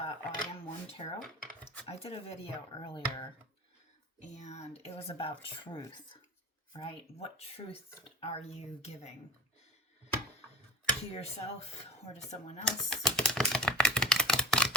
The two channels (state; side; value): normal; both; correlation 0.35